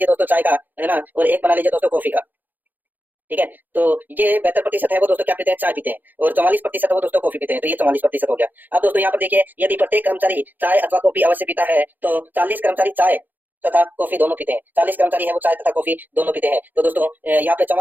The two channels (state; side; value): late; left; 0.086 ms